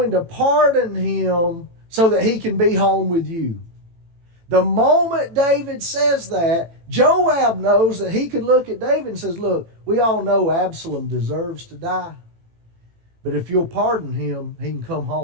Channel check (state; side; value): late; left; 18 ms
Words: to pardon him so that he can be home with you. The moment David says that, Joab knows that he could look at David and says, look, we all know Absalom deserves to die. But if you'll pardon him, he can come